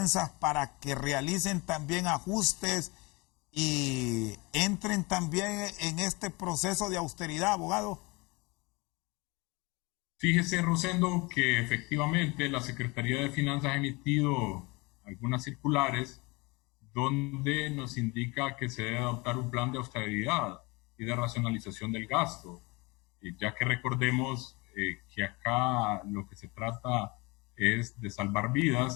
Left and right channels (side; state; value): right; quieter; 26.0 dB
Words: para que realicen también ajustes y entren también en este proceso de austeridad, abogado? Fíjese, Rosendo, que efectivamente la Secretaría de Finanzas ha emitido algunas circulares donde nos indica que se debe adoptar un plan de austeridad y de racionalización del gasto, ya que recordemos que acá lo que se trata es de salvar